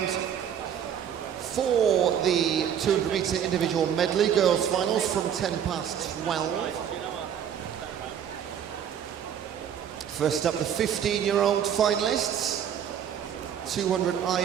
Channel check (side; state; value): left; quieter; 8.9 dB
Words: for the 200-metre individual medley girls finals from 10 past 12. First up, the 15-year-old finalists. 200